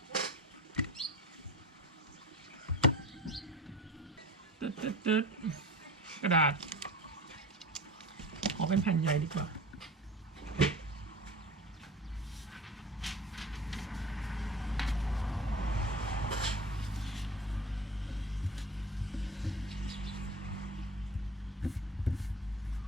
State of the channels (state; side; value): normal; both; correlation 0.34